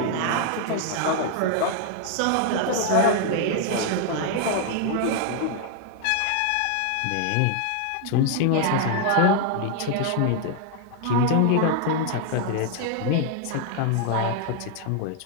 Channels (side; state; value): both; different; correlation 0.00